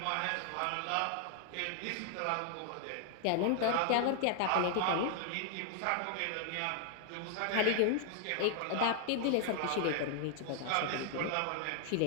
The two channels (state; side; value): different; both; correlation 0.00